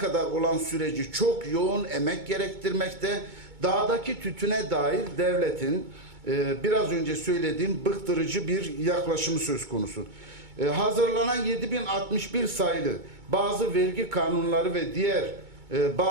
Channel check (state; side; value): late; left; 2.2 ms